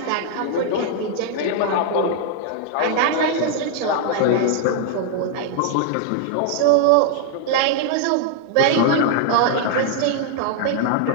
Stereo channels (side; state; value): both; different; correlation -0.01